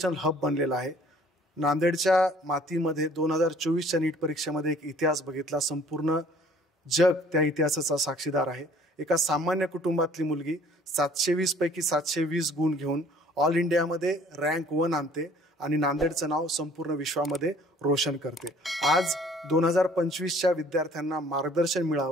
हब बनलेलं आहे। नांदेडच्या मातीमध्ये 2024च्या नीट परीक्षेमध्ये एक इतिहास बघितला। संपूर्ण जग त्या इतिहासाचा साक्षीदार आहे। एका सामान्य कुटुंबातली मुलगी 720 पैकी 720 गुण घेऊन ऑल इंडियामध्ये रँक 1 आणते आणि नांदेडचं नाव संपूर्ण विश्वामध्ये रोशन करते। आज 2025च्या विद्यार्थ्यांना मार्गदर्शन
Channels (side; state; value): both; normal; correlation 0.54